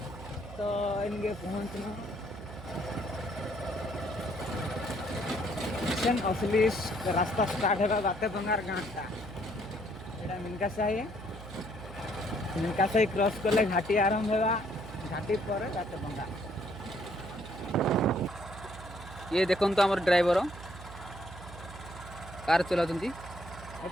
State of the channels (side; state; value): right; noise; hum, 14 dB below the sound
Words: तो इनके पहुँचलु असली रास्ता स्टार्ट है बातेपंगार गाँटा एटा मिनका साई क्रॉस कले घाटी आरंभ होगा घाटी पर बातेपंगा ये देखो तो आम ड्राइवर कार चला